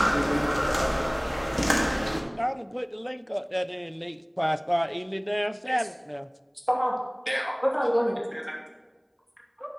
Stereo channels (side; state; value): both; identical; correlation 1.00